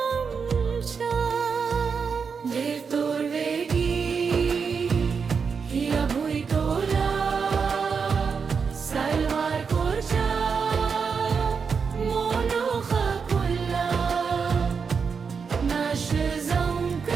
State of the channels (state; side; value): quieter; left; 5.8 dB